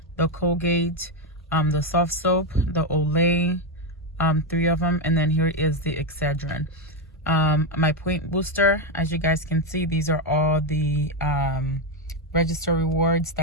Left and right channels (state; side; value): normal; both; correlation 0.07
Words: The Colgate, the soft soap, the Olay, 3 of them. And then here is the Excedrin. My point booster, as you guys can see, these are all the register rewards